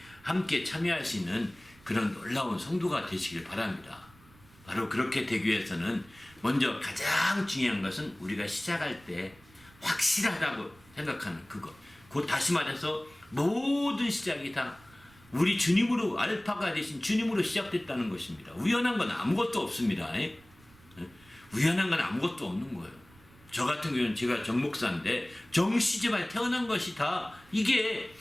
함께 참여할 수 있는 그런 놀라운 성도가 되시길 바랍니다. 바로 그렇게 되기 위해서는 먼저 가장 중요한 것은 우리가 시작할 때 확실하다고 생각하는 그것. 곧 다시 말해서 모든 시작이 다 우리 주님으로, 알파가 되신 주님으로 시작됐다는 것입니다. 우연한 건 아무것도 없습니다. 우연한 건 아무것도 없는 거예요. 저 같은 경우는 제가 정목사인데 정시집안에 태어난 것이 다 이게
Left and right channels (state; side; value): noise; right; rumble, 26 dB below the sound